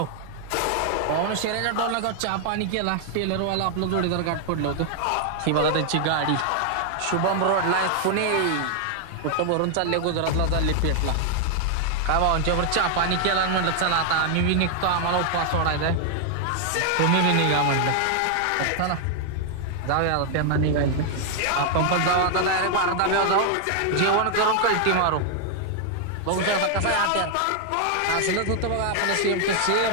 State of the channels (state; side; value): different; both; correlation 0.00